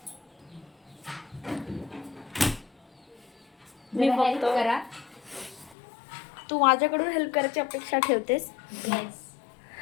मी हेल्प फक्त करा. तू माझ्याकडून हेल्प करायची अपेक्षा ठेवतेस. येस.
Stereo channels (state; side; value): drops out; right; at 5.8 s